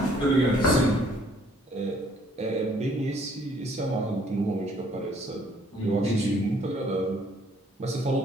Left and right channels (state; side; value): normal; both; correlation 0.62